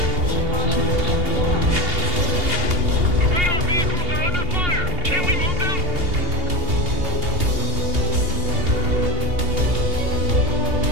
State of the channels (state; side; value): late; left; 2.8 ms